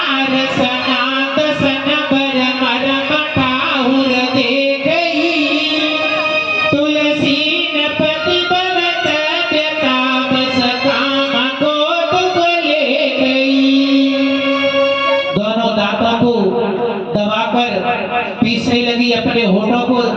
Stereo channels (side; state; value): both; identical; correlation 1.00